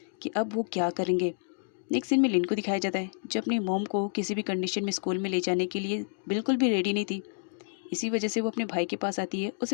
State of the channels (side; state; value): right; silent; digital silence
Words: कि अब वो क्या करेंगे। नेक्स्ट सीन में लिन को दिखाया जाता है जो अपनी मॉम को किसी भी कंडीशन में स्कूल में ले जाने के लिए बिल्कुल भी रेडी नहीं थी। इसी वजह से वो अपने भाई के पास आती है